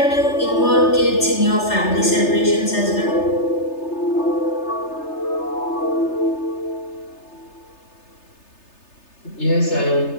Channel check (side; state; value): right; late; 3.3 ms